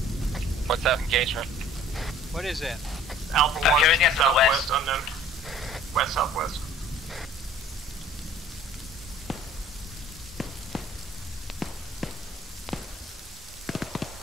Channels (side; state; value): both; normal; correlation 0.51